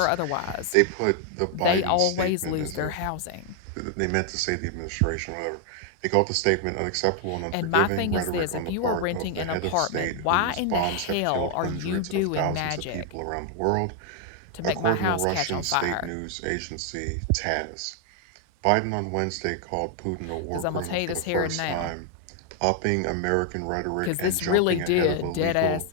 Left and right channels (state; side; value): different; both; correlation 0.00